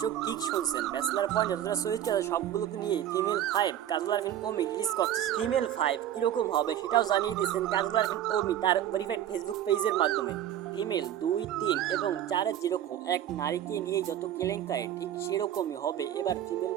ঠিক শুনছেন, ব্যাচেলার পয়েন্ট যতটা চরিত্র আছে সবগুলোকে নিয়ে ফিমেল 5 কাজল আরফিন ওমি রিলিজ করতেছে। ফিমেল 5 কিরকম হবে সেটাও জানিয়ে দিয়েছেন কাজল আরফিন ওমি তার ভেরিফাইড ফেসবুক পেজের মাধ্যমে। ফিমেল ২, ৩ এবং ৪ যেরকম এক নারীকে নিয়ে যত কেলেঙ্কারি, ঠিক সেরকমই হবে এবার ফিমেল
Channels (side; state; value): left; quieter; 11.2 dB